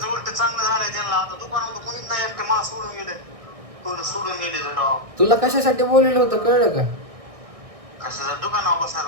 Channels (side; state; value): left; late; 1.6 ms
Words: उलट चांगलं झालंय त्यांना. आता दुकानात कोणीच नाही, एकटे मला सोडून गेले. सोडून गेले राव. तुला कशासाठी बोललेलं होतं कळलं का? कशाचं दुकानावर